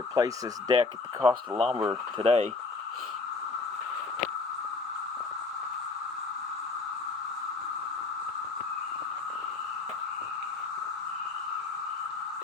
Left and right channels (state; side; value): quieter; right; 3.9 dB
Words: this deck at the cost of lumber today.